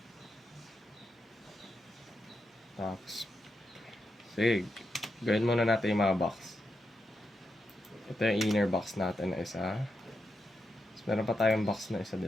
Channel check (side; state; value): both; normal; correlation 0.85